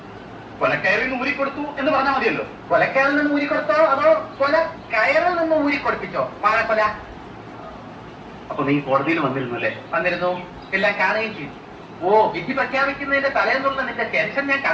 കൊലക്കയറിൽ നിന്ന് ഊരിക്കൊടുത്തു എന്ന് പറഞ്ഞാൽ മതിയല്ലോ. കൊലക്കയറിൽ നിന്ന് ഊരിക്കൊടുത്തോ അതോ കൊല കയറിൽ നിന്ന് ഊരിക്കൊടുപ്പിച്ചോ? വാഴക്കൊല. അപ്പൊ നീ കോടതിയിൽ വന്നിരുന്നു അല്ലേ? വന്നിരുന്നു, എല്ലാം കാണുകയും ചെയ്തു. ഓ, വിധി പ്രഖ്യാപിക്കുന്നതിന്റെ തലേന്നുള്ള നിന്റെ ടെൻഷൻ ഞാൻ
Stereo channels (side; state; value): both; identical; correlation 1.00